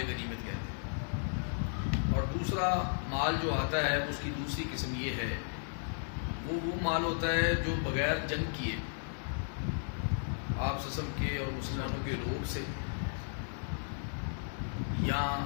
غنیمت کہتے ہیں۔ اور دوسرا مال جو آتا ہے اس کی دوسری قسم یہ ہے، وہ مال ہوتا ہے جو بغیر جنگ کیے آپ سسم کے اور مسلمانوں کے روب سے، یا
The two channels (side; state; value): right; silent; digital silence